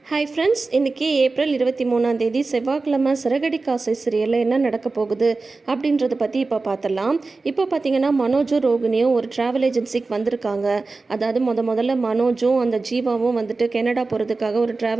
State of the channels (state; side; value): quieter; left; 3.7 dB